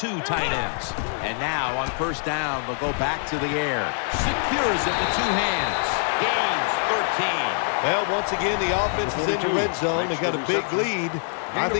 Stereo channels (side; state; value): right; silent; 62 dB below the other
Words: tight ends. And now on first down, they'll go back to the air. Secures it with 2 hands. gains 13. Well, once again, the offense is in the red zone. They got a big lead. I